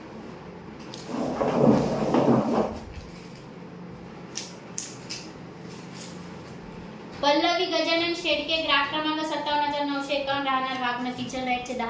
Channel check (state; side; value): identical; both; correlation 1.00